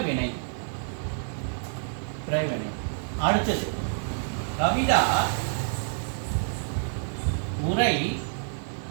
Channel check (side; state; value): left; silent; digital silence